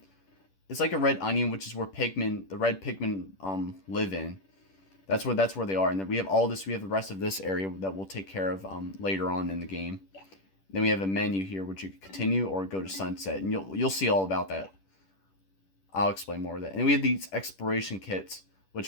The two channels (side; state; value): right; late; 10 ms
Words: it's like a red onion, which is where the red Pikmin live in. That's where they are. And then we have all this. We have the rest of this area that we'll take care of later on in the game. Then we have a menu here, which you can continue or go to sunset, and you'll see all about that. I'll explain more of that. And we have these exploration kits,